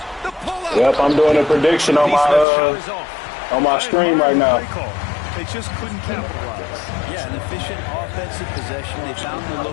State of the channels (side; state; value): right; drops out; at 2.5 s